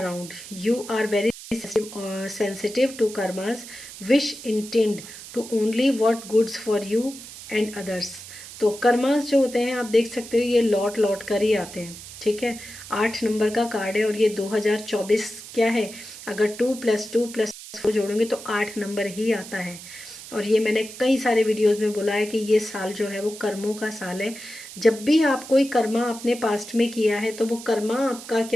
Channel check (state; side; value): noise; right; hiss, 14 dB below the sound